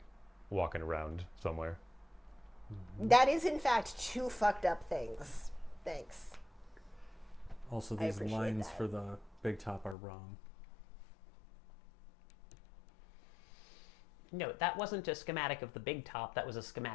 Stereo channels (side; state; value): right; drops out; at 10.0 s